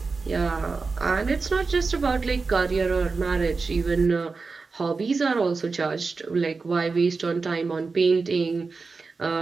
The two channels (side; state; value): left; quieter; 4.3 dB